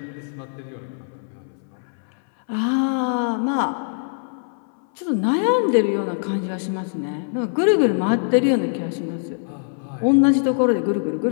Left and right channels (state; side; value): silent; right; 64 dB below the other